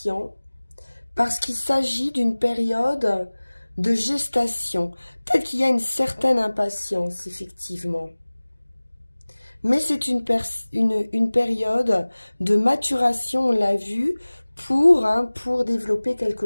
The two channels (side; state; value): both; inverted; correlation -1.00